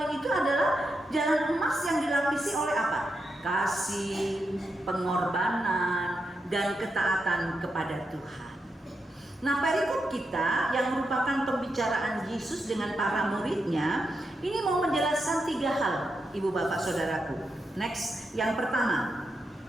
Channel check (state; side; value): normal; both; correlation 0.85